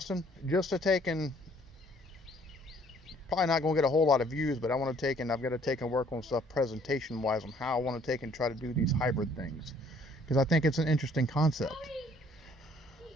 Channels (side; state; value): both; normal; correlation 0.60